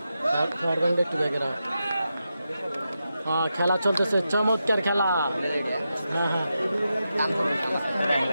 খেলা চলতেছে, চমৎকার খেলা।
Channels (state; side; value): inverted; both; correlation -0.88